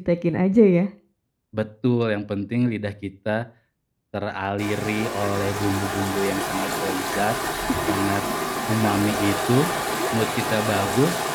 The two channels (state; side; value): identical; both; correlation 1.00